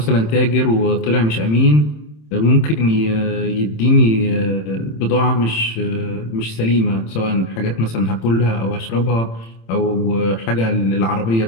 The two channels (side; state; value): right; late; 27 ms